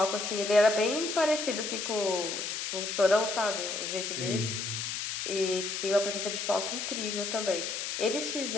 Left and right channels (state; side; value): noise; left; hiss, 3 dB below the sound